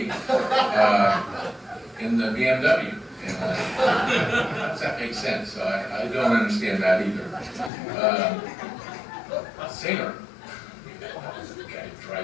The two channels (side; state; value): right; drops out; at 7.7 s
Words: in the BMW. And does that make sense? I don't understand that either. Singer, the guy